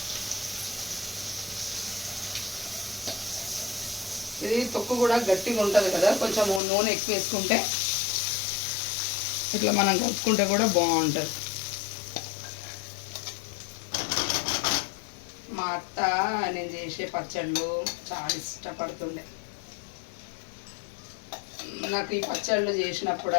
ఇది తొక్కు కూడా గట్టిగా ఉంటుంది కదా, కొంచెం నూనె ఎక్కువ వేసుకుంటే ఇట్లా మనం కలుపుకుంటే కూడా బాగుంటుంది. మా అత్త నేను చేసే పచ్చళ్ళు చాలా ఇష్టపడుతుండే. నాకు ఈ పచ్చళ్ళు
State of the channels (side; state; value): right; drops out; at 6.6 s